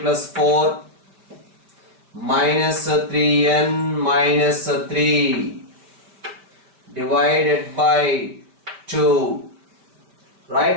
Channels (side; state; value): left; late; 5.2 ms